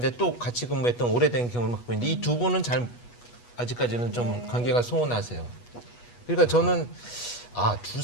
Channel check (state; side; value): late; right; 8.3 ms